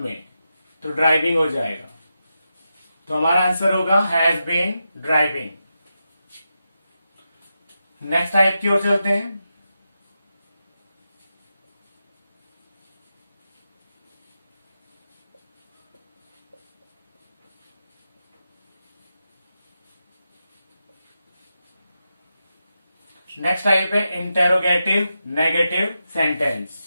में, तो ड्राइविंग हो जाएगा। तो हमारा आंसर होगा has been driving. Next type की ओर चलते हैं। नेक्स्ट टाइप है इंटेरोगेटिव नेगेटिव सेंटेंस।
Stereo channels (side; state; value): both; inverted; correlation -0.88